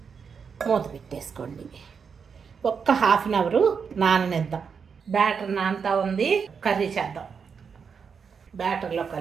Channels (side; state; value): left; quieter; 6.2 dB